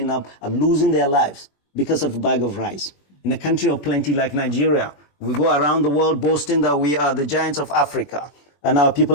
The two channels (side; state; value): right; late; 21 ms